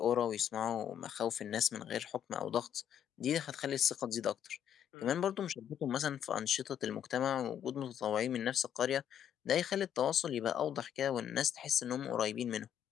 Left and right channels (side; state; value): right; quieter; 9.6 dB